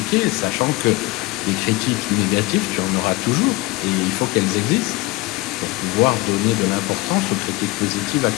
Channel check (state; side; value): quieter; right; 21.1 dB